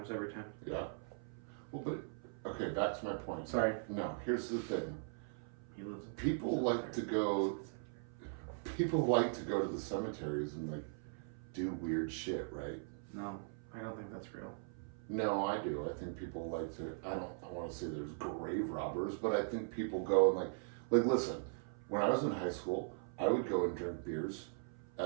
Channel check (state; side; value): silent; left; 51 dB below the other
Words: every time. Yeah. Well, but okay, back to my point. Sorry. No, here's the thing. He lives. People like to go to the cemeteries and, like, do weird shit, right? No, I don't think that's real. No, I do. I think people like to, I want to say there's grave robbers, but I think people go and like listen, when I was in high school, I would go and drink beers